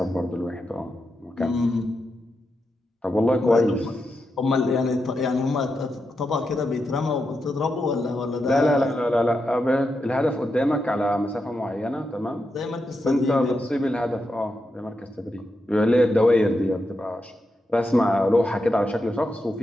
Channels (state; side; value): normal; both; correlation 0.86